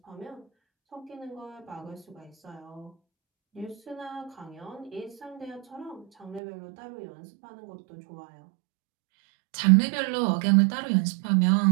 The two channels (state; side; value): drops out; left; at 6.4 s